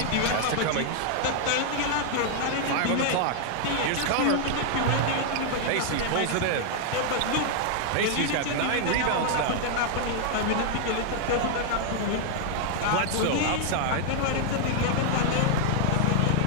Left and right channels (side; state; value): both; different; correlation 0.00